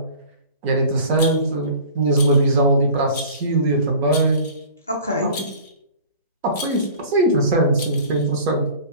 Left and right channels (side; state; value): both; inverted; correlation -0.43